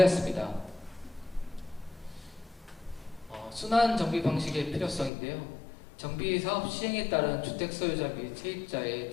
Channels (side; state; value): right; drops out; at 5.1 s